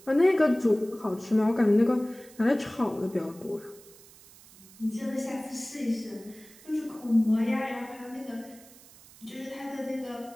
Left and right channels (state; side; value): noise; right; hiss, 23 dB below the sound